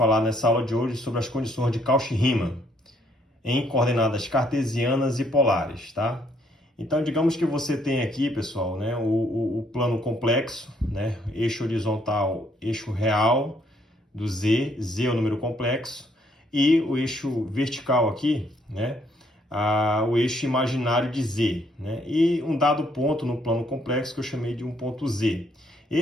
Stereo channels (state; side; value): normal; both; correlation 0.68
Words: nessa aula de hoje sobre as condições de Cauchy-Riemann em coordenadas cartesianas e polares, tá? Então digamos que você tem aqui, pessoal, né, o plano complexo, né, eixo horizontal, eixo real do Z, Z é o número complexo, e o eixo vertical aqui, né, o eixo imaginário de Z, né? E um dado ponto no plano complexo que eu chamei de um ponto Z.